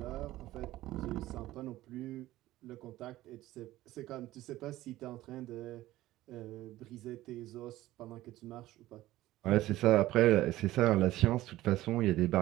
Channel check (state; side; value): quieter; left; 16.0 dB